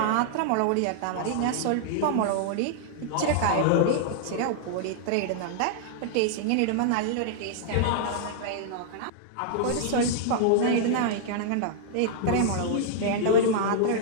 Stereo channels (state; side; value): different; both; correlation -0.01